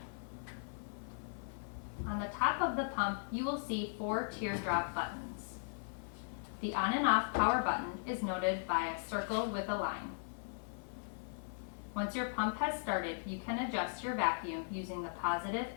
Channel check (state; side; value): silent; right; 52 dB below the other